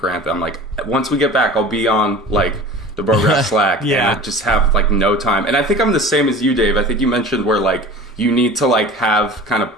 that I'm like, once we get back, I'll be on like the Brograph Slack. Yeah, and I just have like no time. And I think I'm the same as you, Dave. I think you mentioned where like you need to like have kind of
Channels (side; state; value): both; normal; correlation 0.39